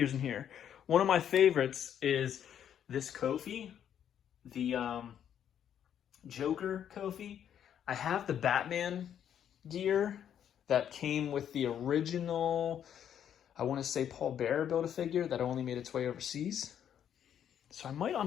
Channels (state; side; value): quieter; right; 9.4 dB